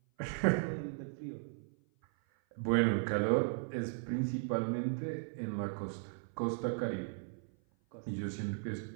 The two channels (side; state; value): left; silent; 53 dB below the other